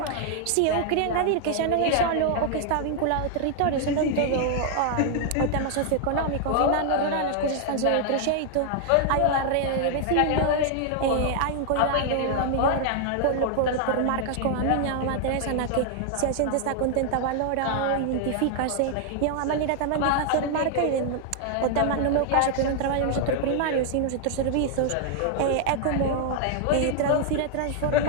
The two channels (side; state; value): both; different; correlation 0.00